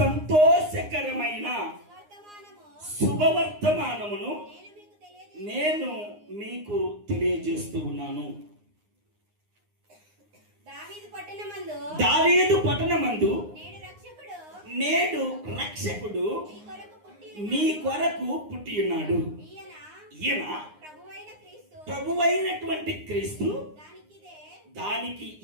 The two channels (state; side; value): late; left; 9.7 ms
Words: శుభవర్తమానమును నేను మీకు తెలియజేస్తూ ఉన్నాను. దావీదు పట్టణమందు నేడు రక్షకుడు మీ కొరకు పుట్టి ఉన్నాడు. ఈయన ప్రభువైనటువంటి క్రీస్తు. దానికి